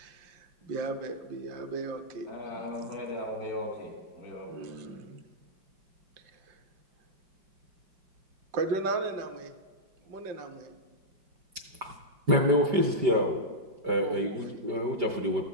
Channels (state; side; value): late; left; 5.1 ms